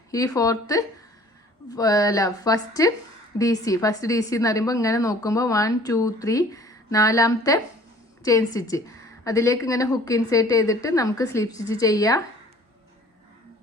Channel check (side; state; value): both; normal; correlation 0.51